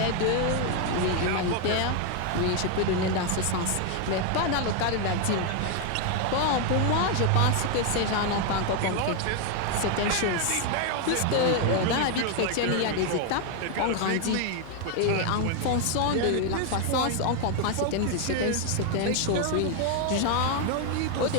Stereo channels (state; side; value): different; both; correlation 0.01